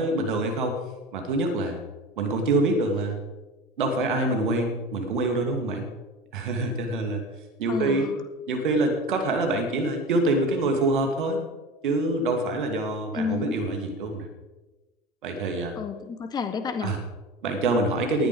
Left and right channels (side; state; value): both; normal; correlation 0.33